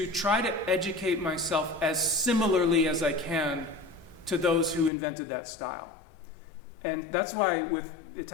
try to educate myself as similarly as I can to those who invented that style. And that's why with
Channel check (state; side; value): drops out; right; at 4.9 s